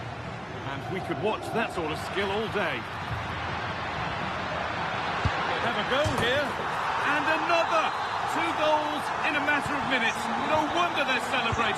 And we could watch that sort of skill all day. They have a go here. And another! 2 goals in a matter of minutes. No wonder they're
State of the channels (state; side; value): identical; both; correlation 1.00